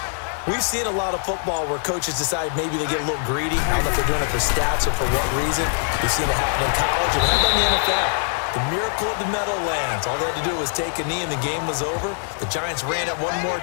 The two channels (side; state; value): right; silent; 64 dB below the other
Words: we've seen a lot of football where coaches decide maybe they get a little greedy. I don't know if they're doing it for stats or for what reason. We've seen it happen in college and have done in the NFL. The miracle of the Meadowlands. All they had to do was take a knee and the game was over. The Giants ran it one more